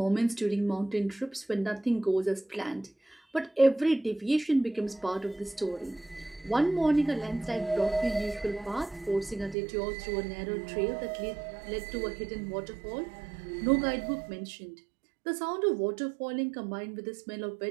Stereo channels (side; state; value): left; drops out; at 9.6 s